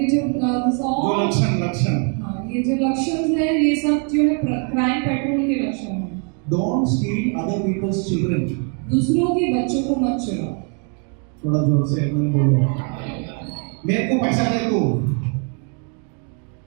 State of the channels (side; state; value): left; quieter; 39.6 dB